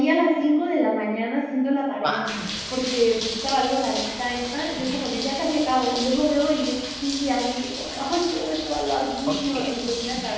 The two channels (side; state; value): both; identical; correlation 1.00